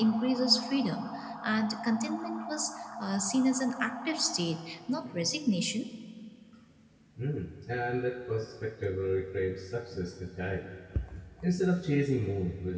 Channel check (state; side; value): identical; both; correlation 1.00